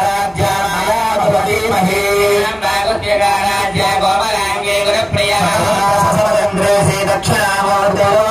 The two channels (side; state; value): both; identical; correlation 1.00